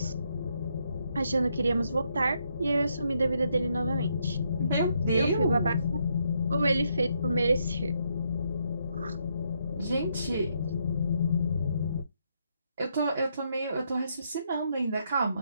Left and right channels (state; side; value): inverted; both; correlation -0.76